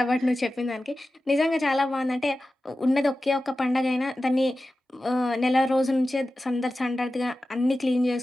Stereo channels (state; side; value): normal; both; correlation 0.94